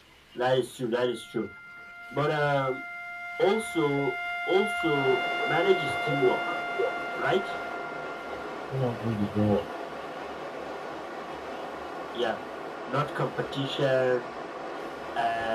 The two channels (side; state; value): both; identical; correlation 1.00